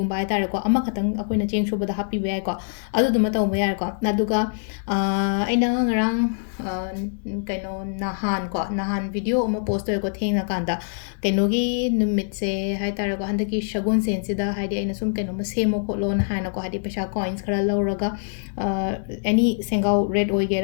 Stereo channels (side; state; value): right; silent; 63 dB below the other